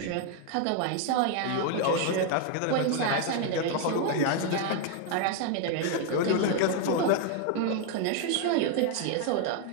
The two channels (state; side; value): different; both; correlation 0.00